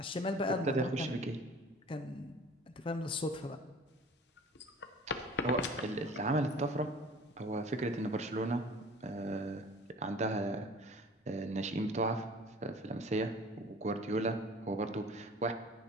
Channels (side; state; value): both; normal; correlation 0.46